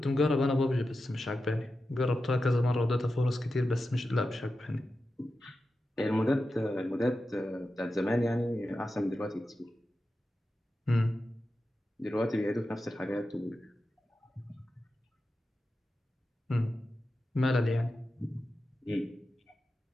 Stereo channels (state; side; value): normal; both; correlation 0.91